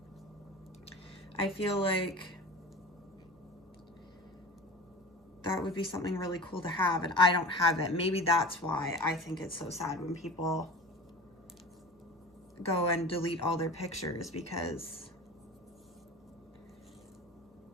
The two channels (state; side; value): normal; both; correlation 0.34